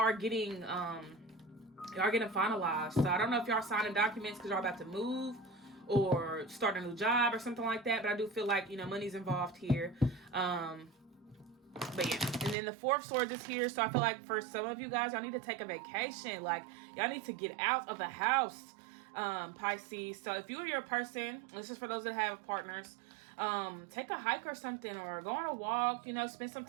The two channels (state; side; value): drops out; left; at 12.6 s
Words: getting finalized. So I don't know if y'all signing documents because y'all about to move or start a new job or something like that, but I do feel like, money's involved here. But yeah, and then the Four of Swords is here. So I feel like for some of you guys, y'all need to take a vacation. Like, y'all need to get out of the house. Pisces. So if you and your person, this is for those that have partners, take a hike or something, or go on a walk, spend some